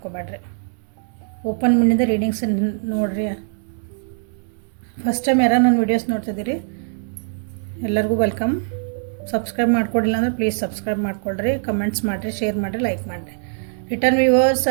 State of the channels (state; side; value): silent; left; digital silence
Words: ಓಪನ್ ಮೈಂಡಿಂದ ರೀಡಿಂಗ್ಸ್ ನೋಡಿರಿ. ಫಸ್ಟ್ ಟೈಮ್ ಯಾರು ನನ್ನ ವೀಡಿಯೋಸ್ ನೋಡ್ತಿದ್ದೀರಿ ಎಲ್ಲರಿಗೂ ವೆಲ್ಕಮ್. ಸಬ್ಸ್ಕ್ರೈಬ್ ಮಾಡ್ಕೊಡಿಲ್ಲ ಅಂದರೆ ಪ್ಲೀಸ್ ಸಬ್ಸ್ಕ್ರೈಬ್ ಮಾಡ್ಕೊಳ್ರಿ, ಕಮೆಂಟ್ಸ್ ಮಾಡಿರಿ, ಶೇರ್ ಮಾಡಿರಿ, ಲೈಕ್ ಮಾಡಿರಿ. Return viewers